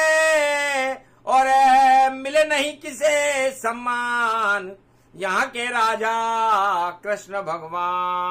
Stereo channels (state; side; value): identical; both; correlation 1.00